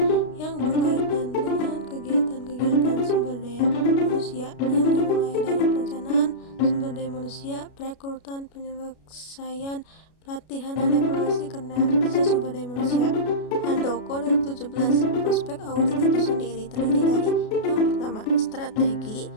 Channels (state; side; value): late; right; 33 ms